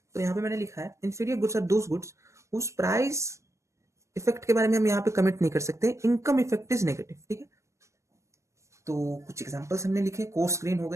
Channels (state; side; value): late; left; 0.14 ms